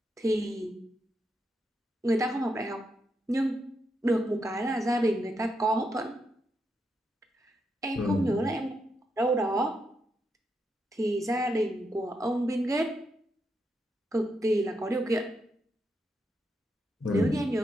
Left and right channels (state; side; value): normal; both; correlation 0.82